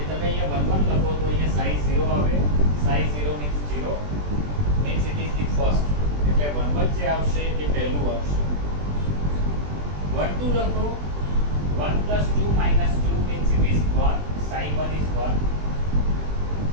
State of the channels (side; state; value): left; late; 20 ms